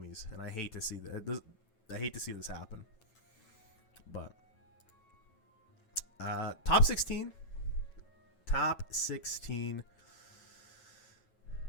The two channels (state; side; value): late; right; 9.1 ms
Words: and I hate to see that. I hate to see this happen. But top 16.